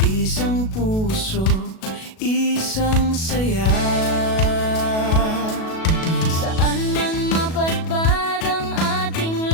isang puso, isang saya. Saan man mapadpad ang ating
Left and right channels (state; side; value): late; right; 37 ms